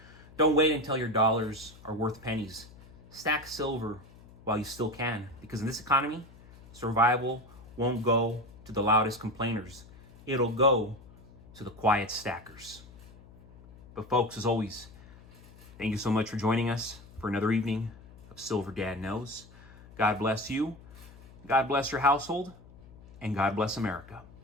don't wait until your dollars are worth pennies. Stack silver while you still can, because in this economy, survival won't go to the loudest complainers. It'll go to the quiet stackers. But folks, as always, thank you so much for joining us for another evening of Silver Dad Knows. God bless you, God bless your household, and God bless America.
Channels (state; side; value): noise; left; hum, 21 dB below the sound